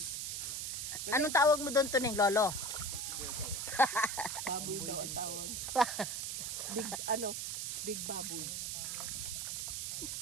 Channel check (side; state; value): right; noise; hiss, 3 dB below the sound